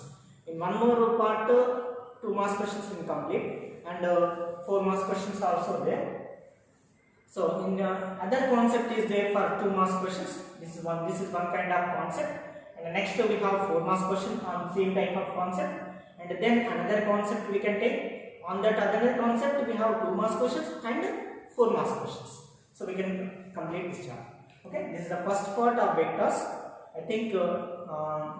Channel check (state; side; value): identical; both; correlation 1.00